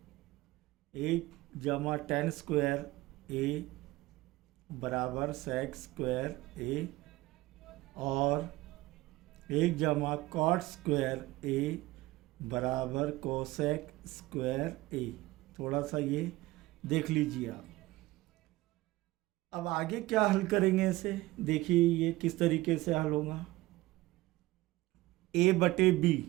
1 जमा tan स्क्वायर ए बराबर sec स्क्वायर ए, और 1 जमा कॉट स्क्वायर ए बराबर कोसेक स्क्वायर ए। थोड़ा सा ये देख लीजिए आप। अब आगे क्या हल करेंगे इसे, देखिए ये किस तरीके से हल होगा। ए बटे बी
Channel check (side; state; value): left; quieter; 18.9 dB